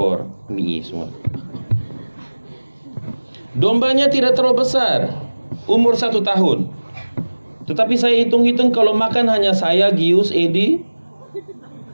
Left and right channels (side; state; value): both; inverted; correlation -1.00